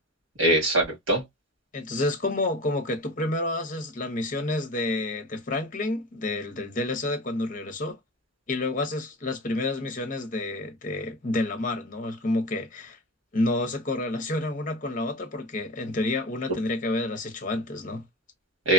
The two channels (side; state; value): both; normal; correlation 0.29